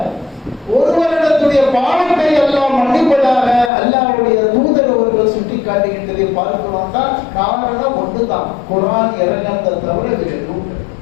ஒரு வருடத்துடைய பாவத்தை எல்லாம் மன்னிப்பதாக அல்லாஹ்வுடைய தூதர் அவர்கள் சுட்டி காட்டுகின்றதை பார்க்கிறோம். தான் காரணம் ஒன்றுதான், குர்ஆன் இறங்கினதை தவிர வேறு எதுவும் கிடையாது.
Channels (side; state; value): right; drops out; at 3.7 s